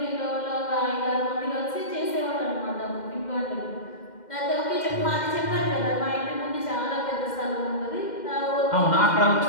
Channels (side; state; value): right; late; 2.1 ms